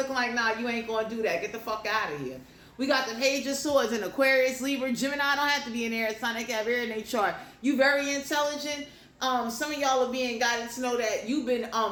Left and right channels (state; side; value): identical; both; correlation 1.00